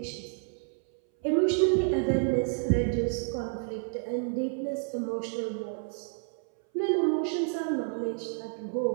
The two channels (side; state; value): left; silent; 58 dB below the other